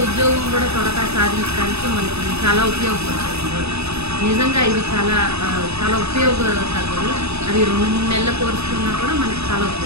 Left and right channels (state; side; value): late; left; 0.79 ms